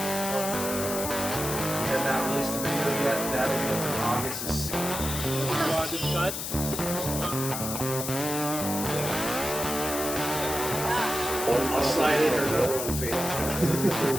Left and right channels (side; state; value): left; noise; hiss, 4 dB below the sound